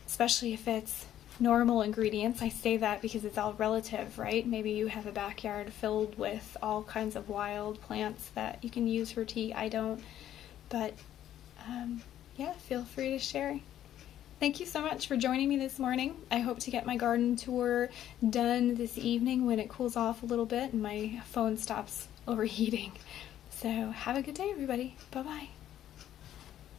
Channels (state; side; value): quieter; right; 11.6 dB